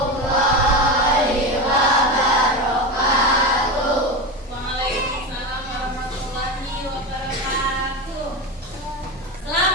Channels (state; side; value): normal; both; correlation 0.20